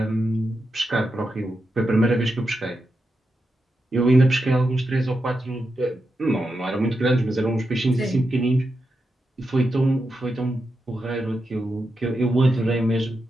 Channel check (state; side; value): normal; both; correlation 0.87